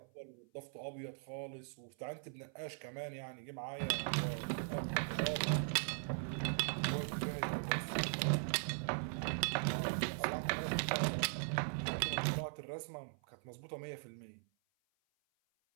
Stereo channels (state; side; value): silent; left; 51 dB below the other